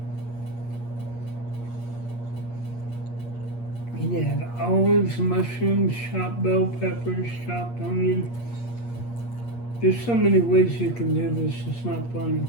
You had olives, mushrooms, chopped bell peppers, chopped onion. There's so many ways you can do this, it's not funny.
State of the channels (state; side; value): late; right; 8.5 ms